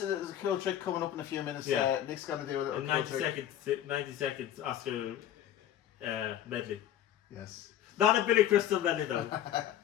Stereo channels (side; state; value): right; quieter; 11.3 dB